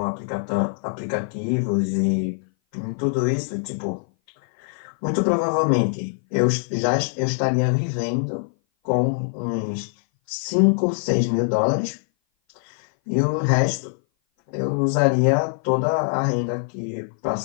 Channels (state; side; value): silent; right; 58 dB below the other